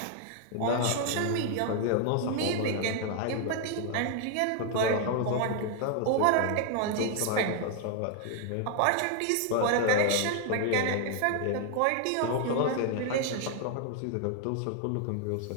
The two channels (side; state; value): both; different; correlation 0.00